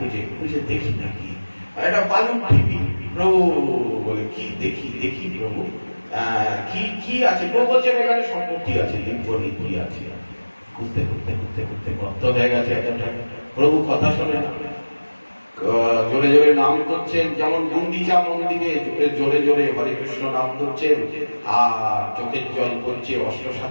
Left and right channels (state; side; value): inverted; both; correlation -1.00